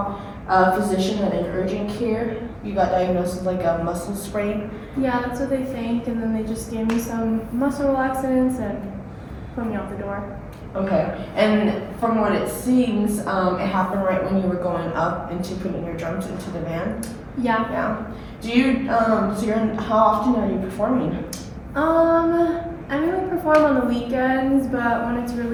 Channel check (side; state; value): both; identical; correlation 1.00